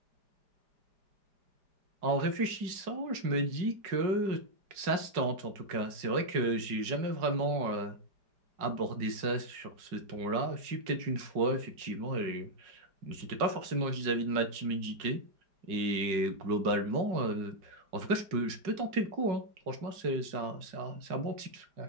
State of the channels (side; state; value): left; late; 5.4 ms